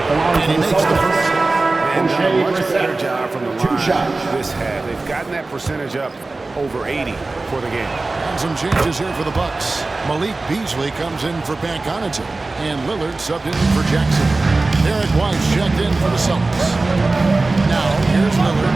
And he makes the first. And done a much better job from the line this half. They've gotten that percentage up over 80 for the game. And some changes here for the Bucks. Malik Beasley comes in for Pat Connaughton, and Lillard subbed in for Jackson. Derek White checked in for the Celtics. Now here's Lillard,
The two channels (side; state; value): left; quieter; 3.3 dB